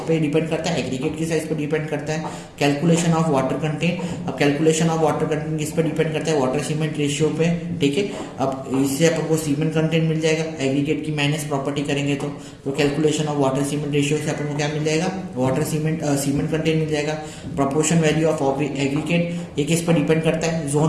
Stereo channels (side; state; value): both; identical; correlation 1.00